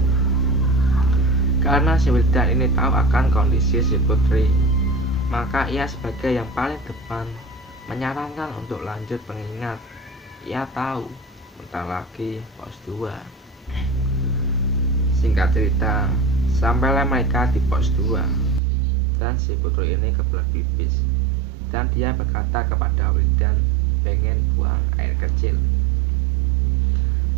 Karena si Wildan ini tahu akan kondisi si Putri, maka ia sebagai yang paling depan menyarankan untuk lanjut, mengingat ia tahu bentar lagi pos 2. Singkat cerita, sampailah mereka di pos 2 dan si Putri ini kebelet pipis dan dia berkata kepada Wildan pengen buang air kecil.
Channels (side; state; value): left; drops out; at 18.6 s